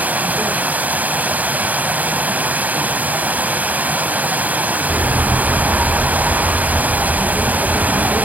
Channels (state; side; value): late; left; 0.076 ms